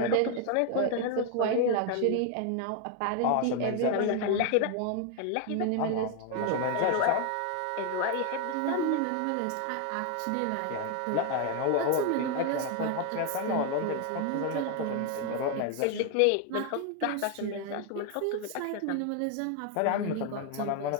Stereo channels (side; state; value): both; different; correlation 0.01